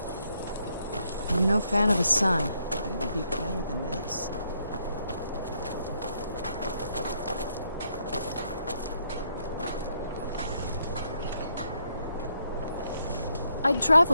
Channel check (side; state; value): both; inverted; correlation -0.75